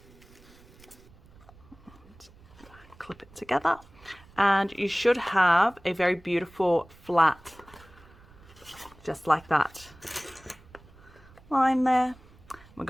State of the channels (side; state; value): right; noise; rumble, 24 dB below the sound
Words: Clip it together, and you should have a very beautiful flat, just like that, line there. We're